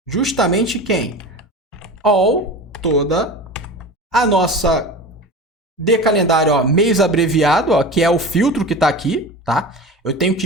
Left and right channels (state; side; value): normal; both; correlation 0.31